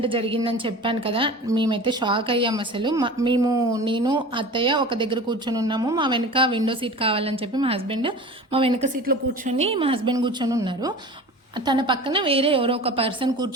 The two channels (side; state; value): both; normal; correlation 0.37